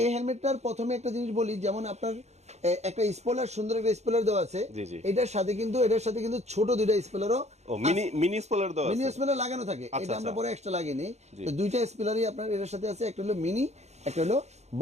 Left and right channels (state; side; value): late; left; 0.32 ms